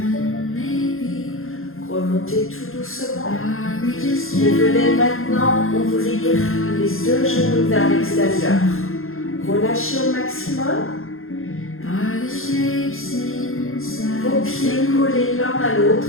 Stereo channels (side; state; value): right; late; 0.61 ms